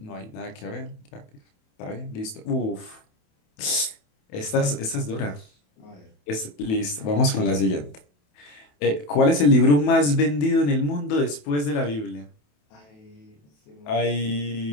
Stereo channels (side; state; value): right; late; 28 ms